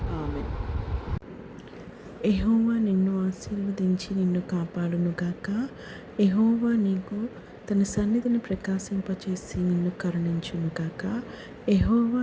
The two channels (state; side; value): identical; both; correlation 1.00